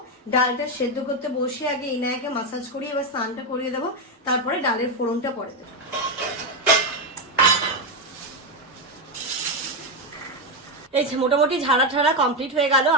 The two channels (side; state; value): both; normal; correlation 0.07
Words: ডালটা সেদ্ধ করতে বসে আগে ইনায়াকে মাসাজ করিয়ে এবার স্নানটা করিয়ে দেবো, তারপরে ডালের ফোড়নটা পরে দেবো। এই যে মোটামুটি ঝাড়া কমপ্লিট হয়ে গেল।